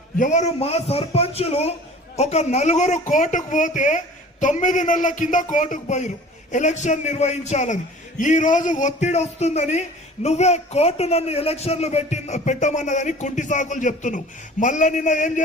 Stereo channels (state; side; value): normal; both; correlation 0.45